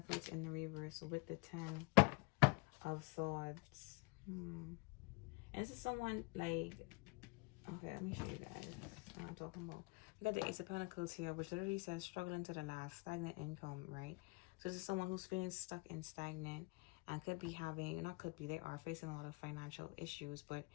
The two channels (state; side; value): quieter; right; 27.4 dB